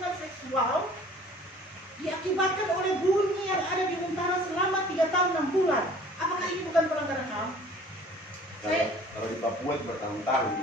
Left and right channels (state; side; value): normal; both; correlation 0.50